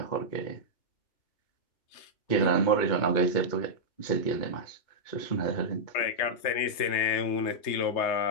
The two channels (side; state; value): right; late; 3.3 ms